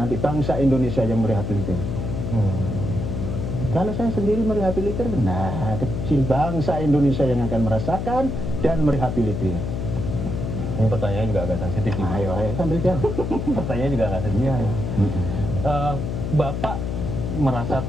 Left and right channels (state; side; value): noise; left; hum, 3 dB below the sound